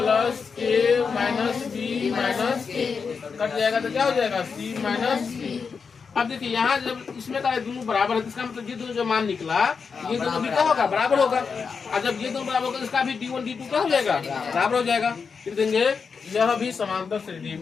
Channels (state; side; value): quieter; right; 5.5 dB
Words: के माइनस b माइनस के कट जाएगा तो क्या हो जाएगा? c माइनस के। अब देखिए यहाँ जब इसमें का दोनों बराबर है, इसका मतलब ये दोनों जो मान निकला ये दोनों भी क्या होगा? बराबर होगा। और जब ये दोनों बराबर होगा इसका भी D1 D2 क्या हो जाएगा? बराबर हो जाएगा। फिर देंगे यह भी समांतर श्रेणी